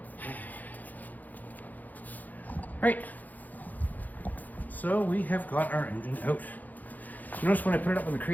Right. So we have got our engine out. Notice when I put it up in the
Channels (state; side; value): late; right; 0.082 ms